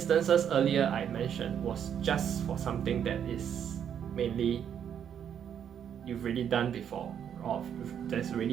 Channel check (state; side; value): quieter; left; 8.7 dB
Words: earlier I mentioned was just for something that is mainly you've already done before, or that's